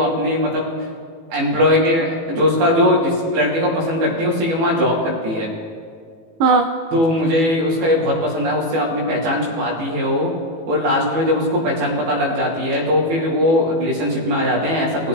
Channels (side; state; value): left; late; 18 ms